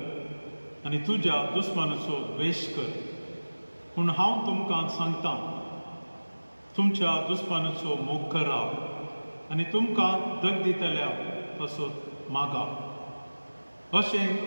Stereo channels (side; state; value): both; inverted; correlation -1.00